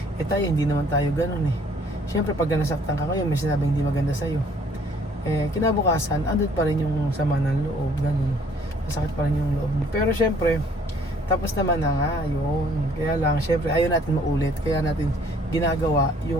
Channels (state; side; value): normal; both; correlation 0.60